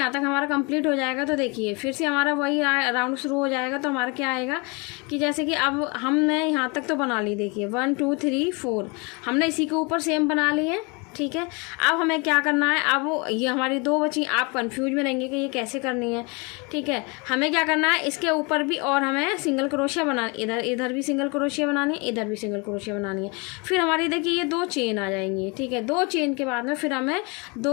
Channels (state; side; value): quieter; right; 30.0 dB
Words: तक हमारा कंप्लीट हो जाएगा, तो देखिए फिर से हमारा वही राउंड शुरू हो जाएगा। तो हमारा क्या आएगा कि जैसे कि अब हमने यहाँ तक तो बना ली, देखिए 1 2 3 4 हमने इसी के ऊपर सेम बना ली है, ठीक है। अब हमें क्या करना है, अब ये हमारी 2 बची, आप कंफ्यूज में रहेंगे कि ये कैसे करनी है, ठीक है। हमें क्या करना है, इसके ऊपर भी और हमें सिंगल क्रोशिया इधर भी सिंगल क्रोशिया बनानी है, इधर भी सिंगल क्रोशिया बनानी है। फिर हमारी देखिए ये 2 चेन आ जाएंगी, ठीक है। 2 चेन के बाद में फिर हमें